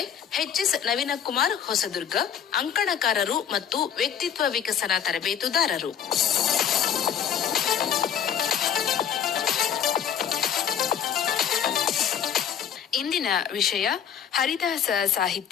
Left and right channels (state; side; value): quieter; right; 8.7 dB